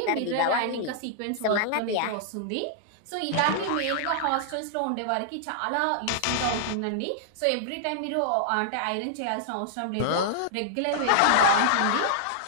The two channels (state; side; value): different; both; correlation -0.01